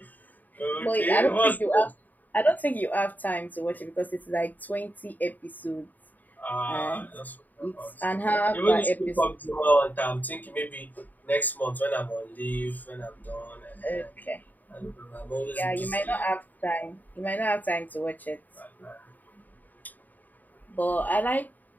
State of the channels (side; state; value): right; late; 0.084 ms